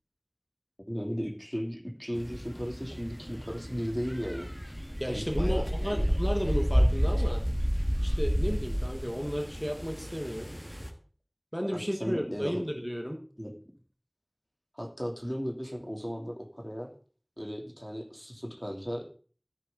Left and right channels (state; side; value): identical; both; correlation 1.00